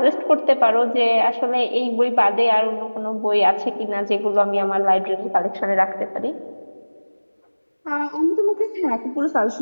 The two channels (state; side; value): inverted; both; correlation -1.00